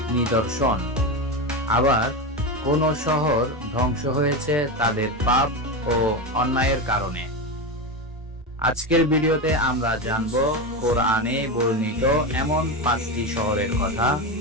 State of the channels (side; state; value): both; normal; correlation 0.17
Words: নিদর্শন, আবার কোন শহর ধ্বংস হয়েছে তাদের পাপ ও অন্যায়ের কারণে। আজকের ভিডিওতে আমরা জানব কোরআনে বর্ণিত এমন 5টি শহরের কথা